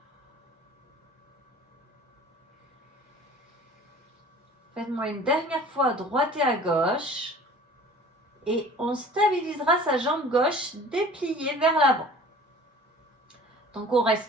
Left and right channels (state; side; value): normal; both; correlation 0.46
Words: Faites-moi une dernière fois à droite et à gauche. Et on stabilisera sa jambe gauche dépliée vers l'avant. Donc on